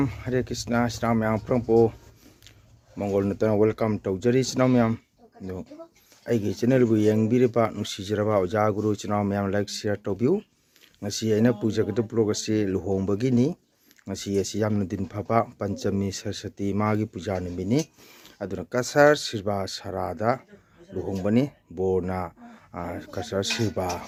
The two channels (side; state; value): both; identical; correlation 1.00